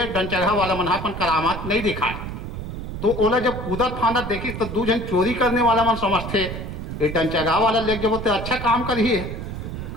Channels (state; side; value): noise; right; rumble, 7 dB below the sound